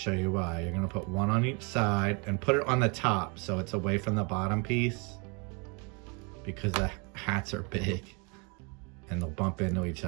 you why. You're gonna put one on each side and put it on the top so it's away from the bottom piece, because the hats are big and they'll bump into each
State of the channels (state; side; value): quieter; left; 32.6 dB